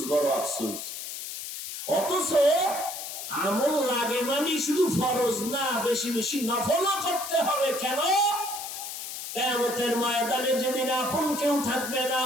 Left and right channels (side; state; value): left; noise; hiss, 8 dB below the sound